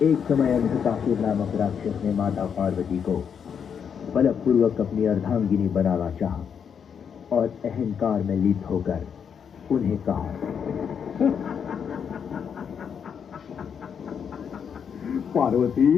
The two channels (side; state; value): right; quieter; 7.3 dB